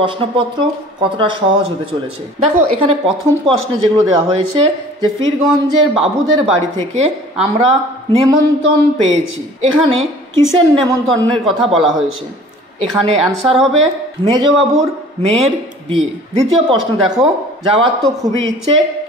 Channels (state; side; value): normal; both; correlation 0.48